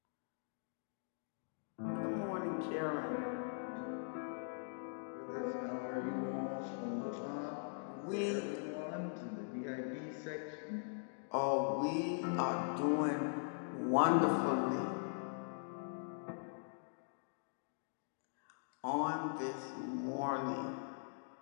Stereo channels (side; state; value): right; silent; digital silence